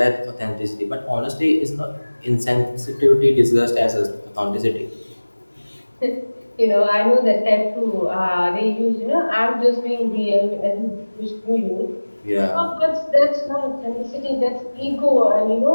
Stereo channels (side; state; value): both; inverted; correlation -1.00